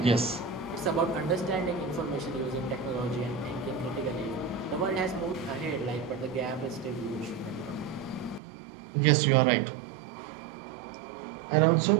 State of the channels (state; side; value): drops out; left; at 8.4 s